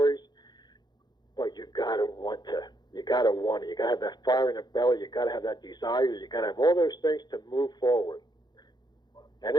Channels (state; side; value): late; right; 0.21 ms